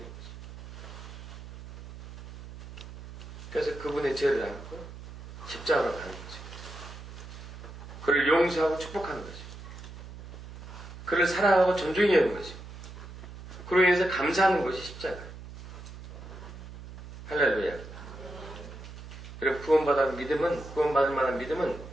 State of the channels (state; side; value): noise; right; hum, 13 dB below the sound